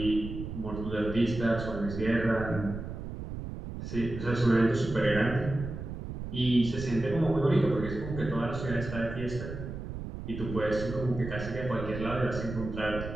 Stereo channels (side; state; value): right; noise; rumble, 8 dB below the sound